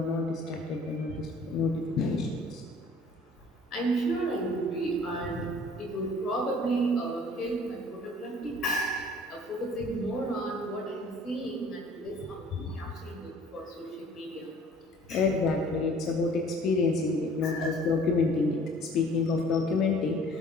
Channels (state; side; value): normal; both; correlation 0.52